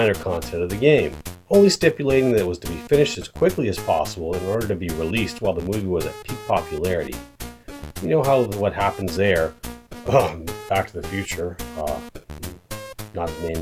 or content of the game, only stipulating that it was to be finished as quickly as possible in order to be released while the movie was at peak popularity. You know what happens there. Back to the Future, not to name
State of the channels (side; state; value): both; identical; correlation 1.00